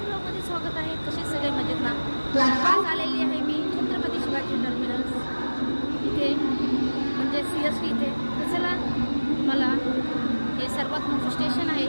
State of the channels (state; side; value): inverted; both; correlation -1.00